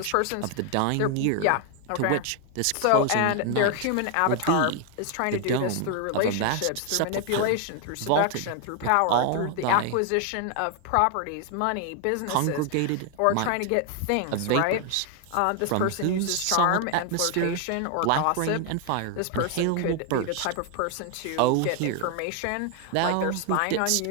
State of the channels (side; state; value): both; different; correlation 0.00